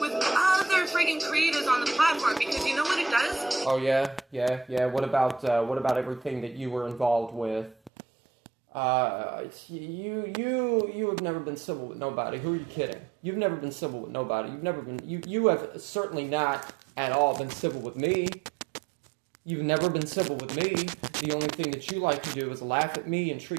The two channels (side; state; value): left; drops out; at 7.9 s